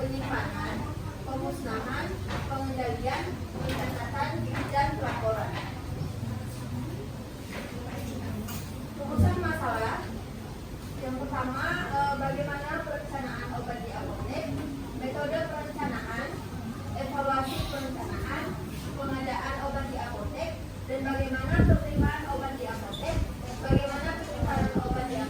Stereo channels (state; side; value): identical; both; correlation 1.00